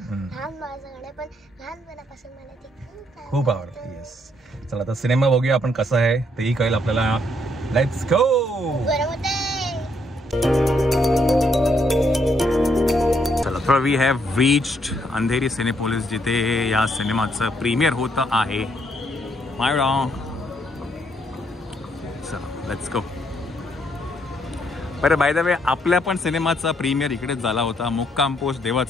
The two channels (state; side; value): normal; both; correlation 0.72